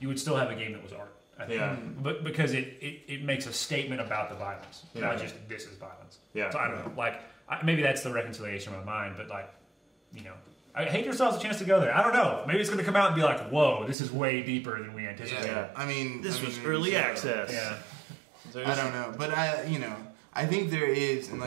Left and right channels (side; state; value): left; drops out; at 14.0 s